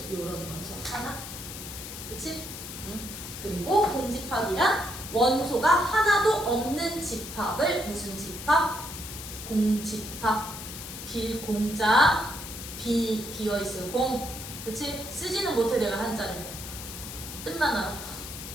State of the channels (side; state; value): left; noise; hiss, 10 dB below the sound